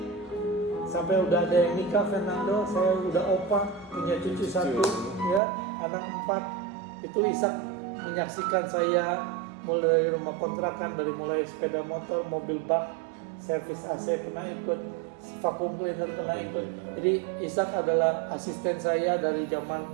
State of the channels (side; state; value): left; drops out; at 5.4 s